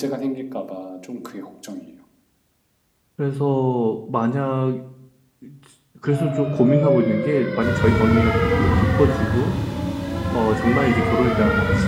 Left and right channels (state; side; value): identical; both; correlation 1.00